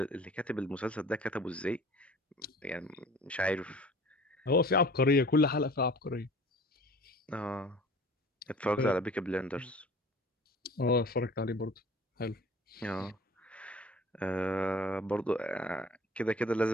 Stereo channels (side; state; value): both; normal; correlation 0.46